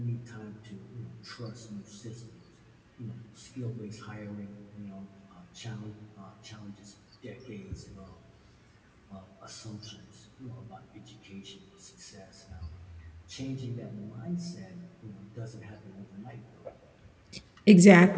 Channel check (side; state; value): both; identical; correlation 1.00